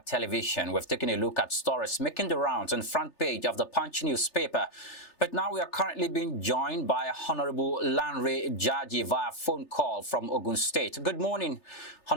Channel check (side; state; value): right; late; 3.4 ms